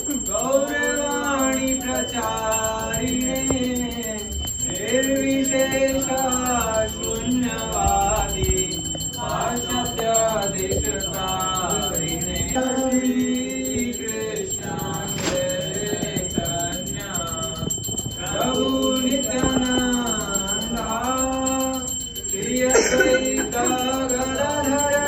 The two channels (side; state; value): both; identical; correlation 1.00